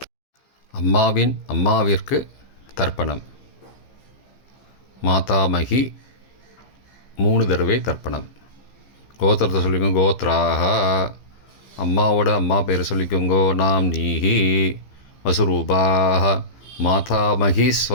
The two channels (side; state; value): right; late; 15 ms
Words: அம்மாவிற்கு தர்ப்பணம். மாதாமகி 3 தடவை தர்ப்பணம். கோத்திரத்தை சொல்லிக்கோங்க. கோத்ராக. அம்மாவோட அம்மா பேர் சொல்லிக்கோங்கோ. நாம் நீஹி வசுரூபாக மாதாமகி